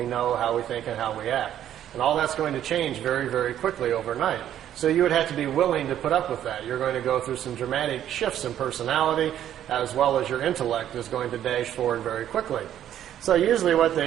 know, how we think, and how we act. And all that's going to change very, very quickly overnight. So you would have to be willing to put up with that. You're going to go through some dramatic shifts in personality, as well as your intellect is going to dash forward very quickly. So usually what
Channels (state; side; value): quieter; left; 11.0 dB